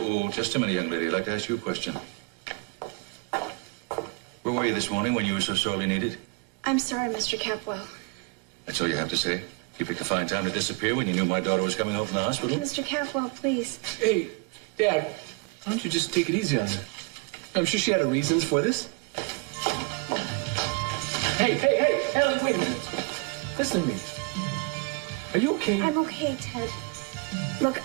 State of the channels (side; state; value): left; quieter; 27.9 dB